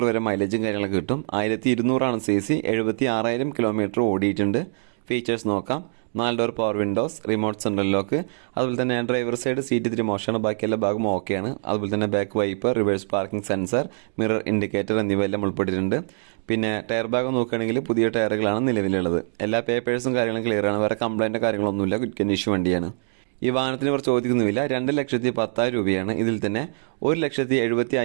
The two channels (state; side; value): silent; left; 63 dB below the other